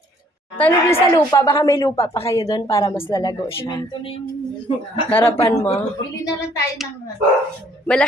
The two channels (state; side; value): normal; both; correlation 0.61